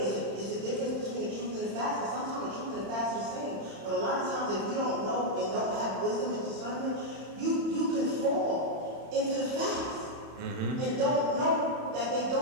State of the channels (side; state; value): left; late; 31 ms